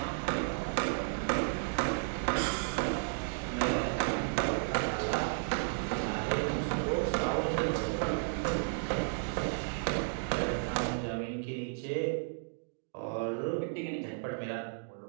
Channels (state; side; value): silent; left; digital silence